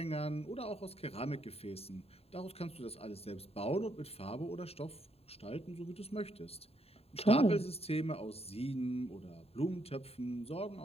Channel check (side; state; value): right; late; 0.29 ms